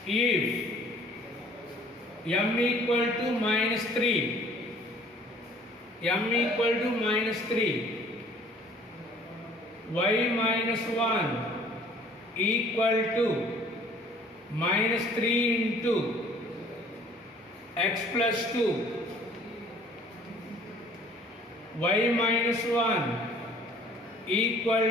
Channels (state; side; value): normal; both; correlation 0.54